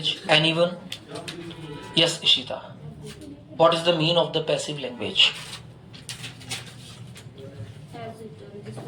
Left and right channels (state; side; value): identical; both; correlation 1.00